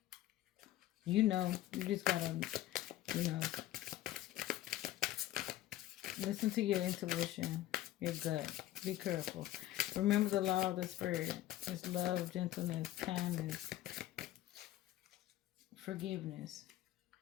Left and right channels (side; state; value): right; quieter; 14.2 dB